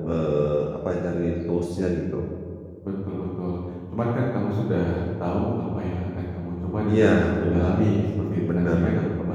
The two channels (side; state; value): both; identical; correlation 1.00